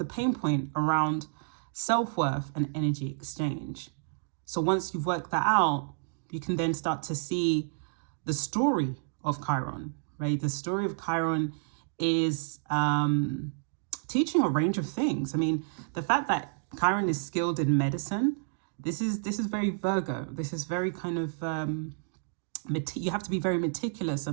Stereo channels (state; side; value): silent; left; digital silence